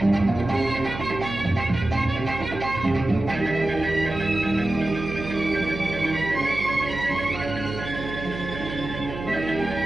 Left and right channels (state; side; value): noise; right; hum, 9 dB below the sound